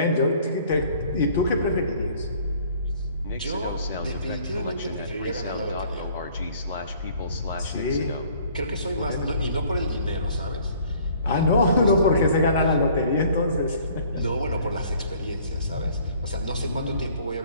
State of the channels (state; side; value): inverted; both; correlation -0.56